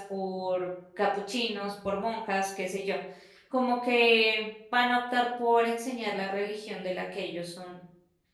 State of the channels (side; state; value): both; identical; correlation 1.00